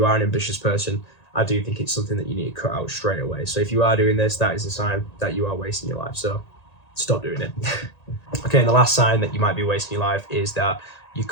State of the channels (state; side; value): late; right; 1.9 ms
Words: are an ambitious person, I do think it's something that you need to cut out straight away. So if you are doing this, that is a sign that you are wasting your life. So stop doing it. Okay, and the last sign that you might be wasting your life is that you're